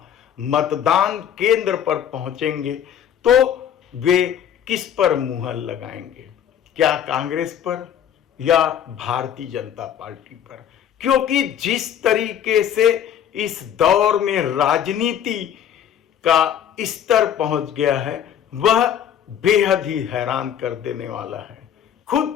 मतदान केंद्र पर पहुंचेंगे तो वे किस पर मुहर लगाएंगे, क्या कांग्रेस पर या भारतीय जनता पार्टी पर। क्योंकि जिस तरीके से इस दौर में राजनीति का स्तर पहुंच गया है वह बेहद ही हैरान कर देने वाला है।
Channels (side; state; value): right; quieter; 9.4 dB